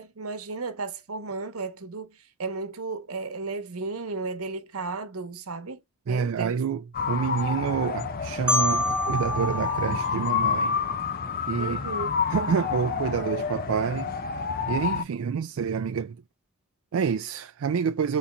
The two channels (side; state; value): both; normal; correlation 0.00